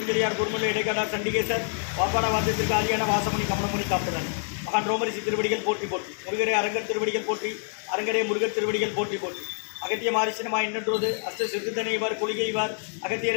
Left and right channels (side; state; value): right; silent; digital silence